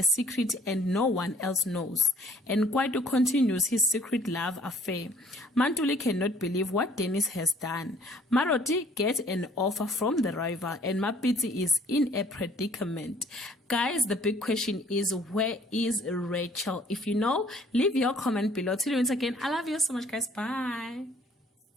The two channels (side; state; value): both; normal; correlation 0.57